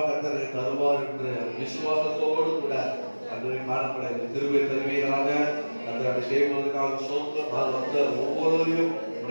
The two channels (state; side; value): inverted; both; correlation -1.00